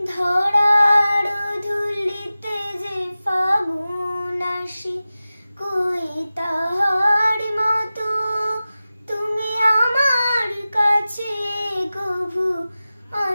ধরার ধুলিতে যে ফাগুন আসি, কই তাহার মতো তুমি আমার কাছে কভু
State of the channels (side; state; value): both; inverted; correlation -0.95